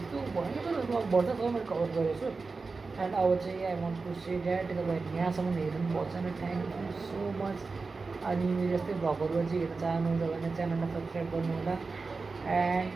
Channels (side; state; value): left; quieter; 4.2 dB